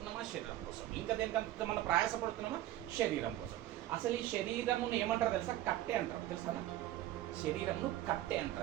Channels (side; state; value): left; quieter; 14.3 dB